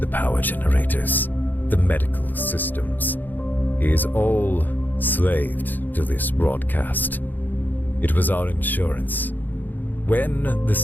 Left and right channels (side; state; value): right; late; 0.087 ms